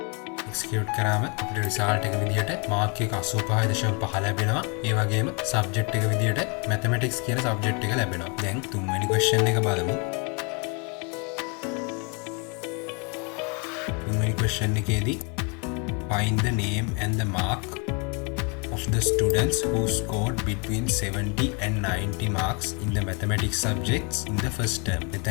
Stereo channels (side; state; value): right; quieter; 33.9 dB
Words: execute කරාම අපිට result එක විදිහට මාක් එක 85.5 ලැබෙනවා. ඒ වගේම සබ්ජෙක්ට් එක විදිහට mathematics කියන සබ්ජෙක්ට් එක ලැබෙනවා. දැන් තුන්වෙනි question එක බලමු. Question එකේදී find the name and the mark of the students who scored between 70 and 90 marks in the mathematics subjects in the first term.